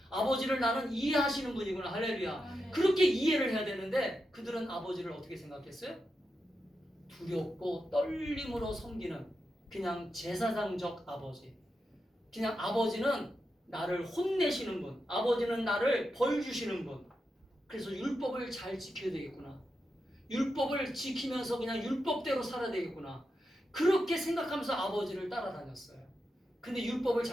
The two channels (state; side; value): normal; both; correlation 0.88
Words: 아버지를 나는 이해하시는 분이구나. 할렐루야. 아멘. 그렇게 이해를 해야 되는데 그들은 아버지를 어떻게 생각했어요? 두렵고 떨림으로 섬기는 그냥 제사장적 아버지. 그냥 아버지는 나를 혼내시는 분. 아버지는 나를 벌 주시는 분. 그래서 율법을 잘 지켜야 되겠구나. 율법을 지키면서 그냥 율법대로 살아야 되겠구나. 그렇게 생각하면서 아버지를 따라다녔어요. 근데 율법을